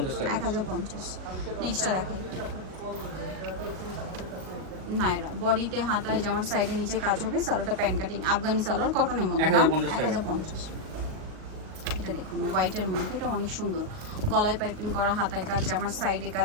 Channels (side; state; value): left; late; 38 ms